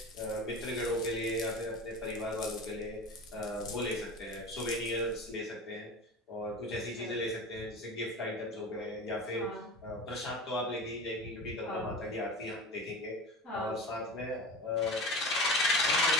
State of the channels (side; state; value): both; normal; correlation 0.32